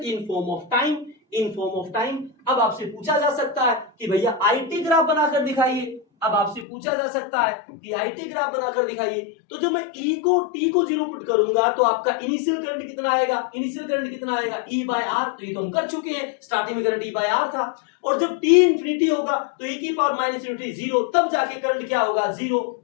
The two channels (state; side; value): drops out; right; at 6.7 s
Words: in form of time. अब आपसे पूछा जा सकता है कि भैया IT ग्राफ बनाकर दिखाइए, तो जो मैं T को 0 पुट करूंगा तो आपका इनिशियल करंट कितना आएगा, E बाय R। तो ये तो हम कर चुके हैं, स्टार्टिंग में करंट E बाय R था, और जब T इंफिनिटी होगा तो E की पावर माइनस इन्फिनिटी 0, तब जाके करंट क्या होगा, 0।